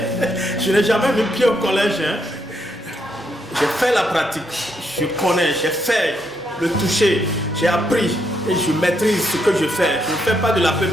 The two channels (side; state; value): both; normal; correlation 0.77